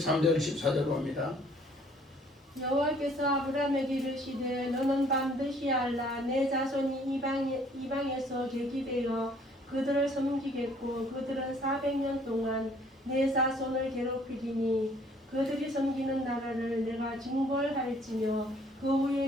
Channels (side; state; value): both; normal; correlation 0.59